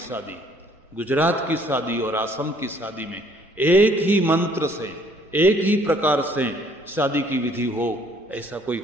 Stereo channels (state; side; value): normal; both; correlation 0.61